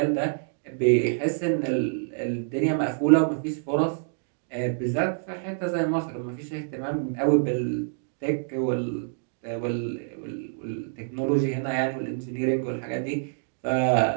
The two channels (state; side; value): silent; left; digital silence